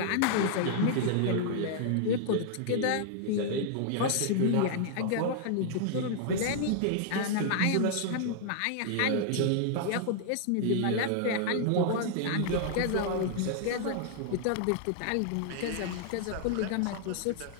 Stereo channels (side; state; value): both; different; correlation -0.01